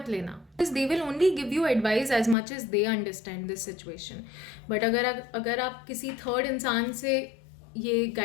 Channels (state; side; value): drops out; right; at 2.4 s